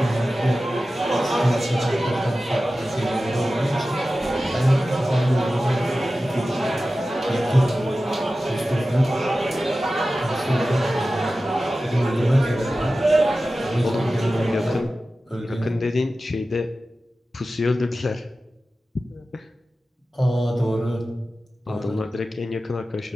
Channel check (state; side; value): normal; both; correlation 0.94